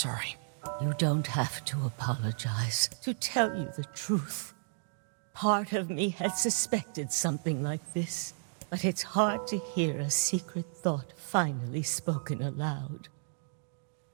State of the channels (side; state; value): left; silent; digital silence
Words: You don't have to apologize. To tell you the truth, part of me had suspected something like this. But it's hard to hear a secret thought finally spoken aloud.